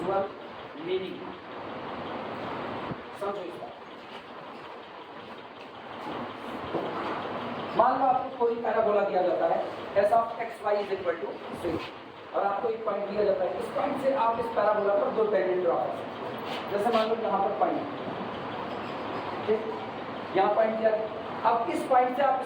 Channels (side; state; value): both; identical; correlation 1.00